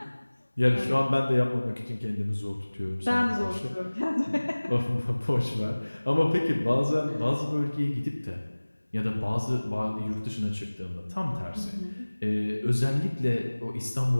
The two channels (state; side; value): inverted; both; correlation -1.00